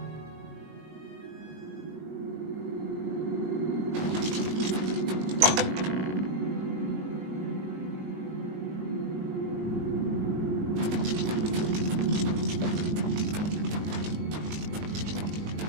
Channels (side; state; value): left; late; 20 ms